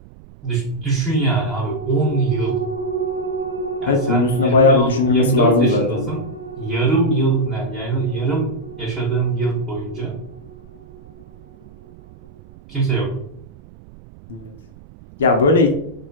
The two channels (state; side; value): noise; right; rumble, 21 dB below the sound